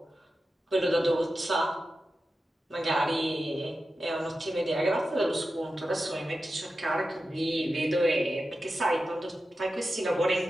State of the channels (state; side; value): normal; both; correlation 0.92